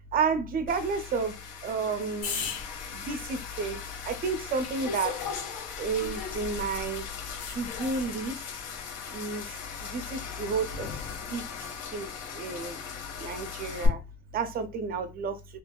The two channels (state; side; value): normal; both; correlation 0.15